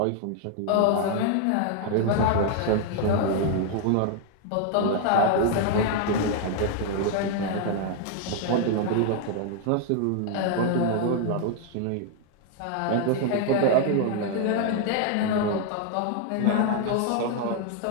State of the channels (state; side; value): different; both; correlation 0.00